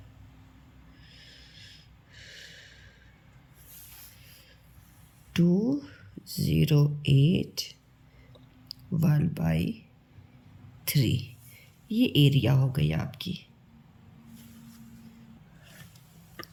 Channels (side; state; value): both; identical; correlation 1.00